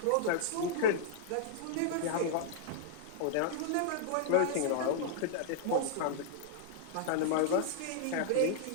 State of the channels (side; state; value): both; different; correlation -0.02